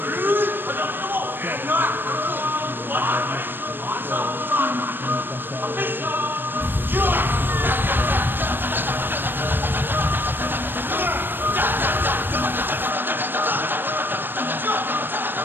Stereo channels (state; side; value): late; left; 0.096 ms